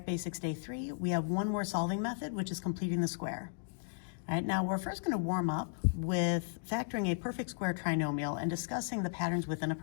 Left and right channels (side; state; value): right; silent; digital silence